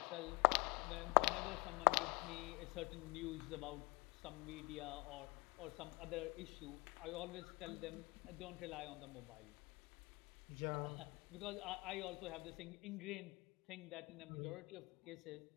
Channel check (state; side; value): quieter; right; 24.9 dB